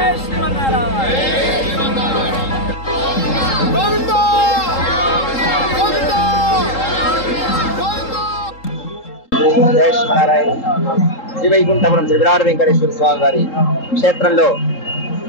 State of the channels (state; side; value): late; right; 3.7 ms